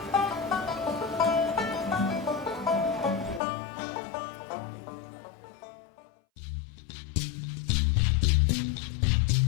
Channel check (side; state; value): right; drops out; at 3.4 s